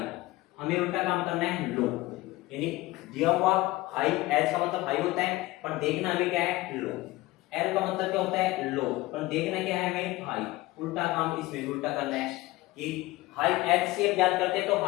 हमें उल्टा काम करना है लो, यानी दिया हुआ हाई, H का मतलब हाई होता है पर देखना हमें क्या है लो, L का मतलब क्या होता है लो पर देखना क्या है हमें हाई, उल्टा काम इसमें उल्टा करना है कि हाई HCF याद करते हैं तो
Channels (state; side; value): quieter; right; 19.0 dB